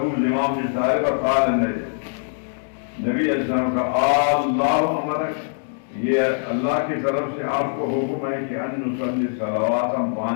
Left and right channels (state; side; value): silent; right; digital silence